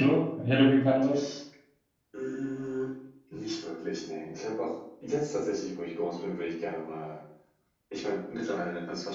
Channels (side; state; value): both; identical; correlation 1.00